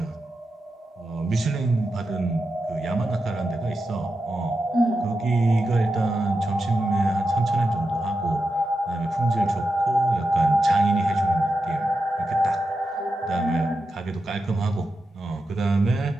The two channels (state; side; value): normal; both; correlation 0.89